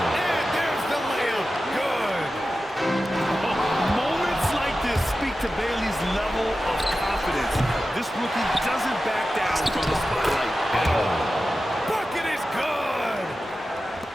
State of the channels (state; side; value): normal; both; correlation 0.93